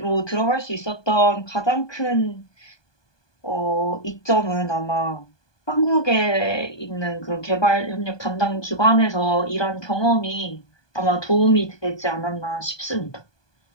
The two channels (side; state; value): right; late; 1.2 ms